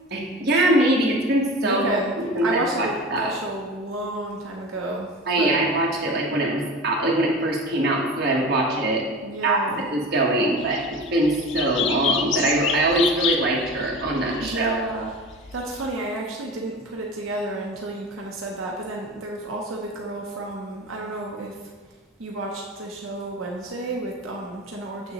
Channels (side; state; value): both; normal; correlation 0.34